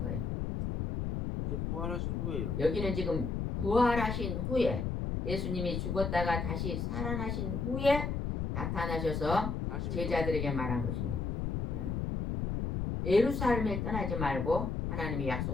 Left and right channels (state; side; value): noise; left; rumble, 1 dB below the sound